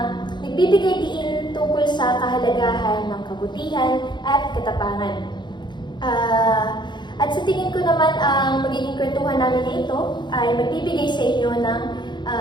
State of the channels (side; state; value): right; late; 0.22 ms